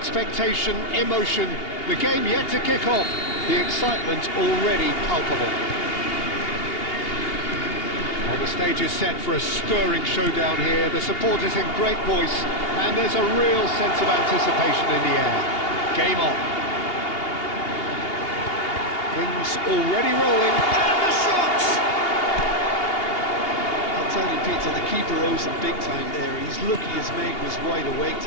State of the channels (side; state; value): right; late; 2.8 ms